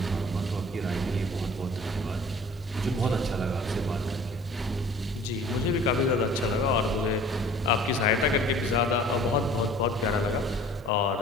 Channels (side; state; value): both; normal; correlation 0.48